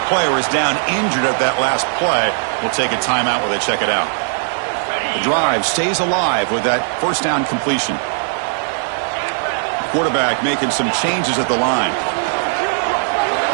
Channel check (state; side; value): silent; left; digital silence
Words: player is down injured at that last play. We'll take a timeout while they check it out. The drive stays alive with that first down completion. Quarterback making some changes at the line.